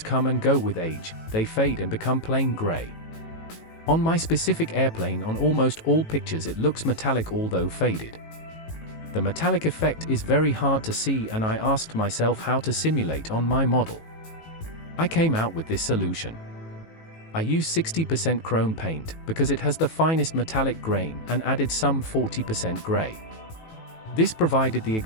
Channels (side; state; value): right; late; 18 ms